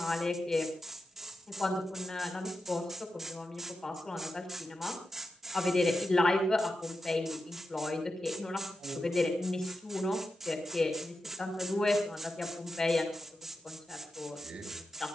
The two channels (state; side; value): normal; both; correlation 0.90